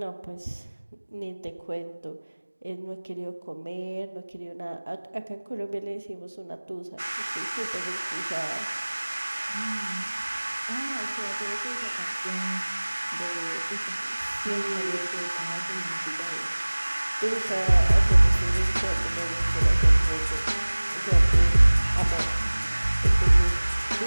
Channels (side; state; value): both; inverted; correlation -1.00